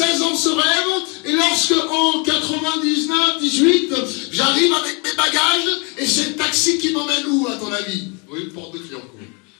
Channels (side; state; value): right; quieter; 32.9 dB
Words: ans ce rêve, et lorsque en 99, 18, j'arrive avec mes bagages, et c'est le taxi qui m'emmène où, à ton avis? Oui, porte de Clignancourt.